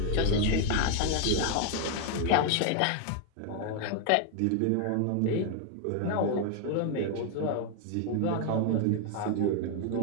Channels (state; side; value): different; both; correlation 0.00